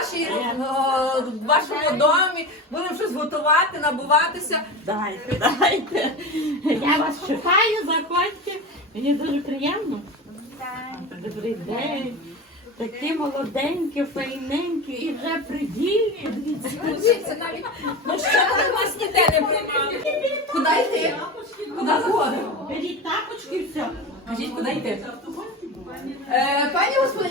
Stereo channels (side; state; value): both; normal; correlation 0.27